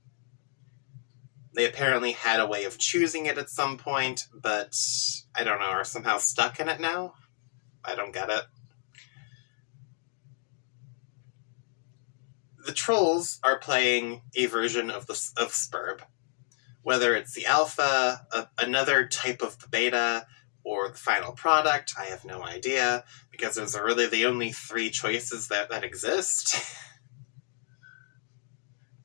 They apparently had a way of choosing it at some point, but I don't know, are somehow stuck in it now? I don't get it. The trolls are playing a version of Spurb. Whether it's the alpha, another type of the beta, or the final product, I have no idea, because those are really the only three choices that exist.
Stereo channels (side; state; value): right; silent; digital silence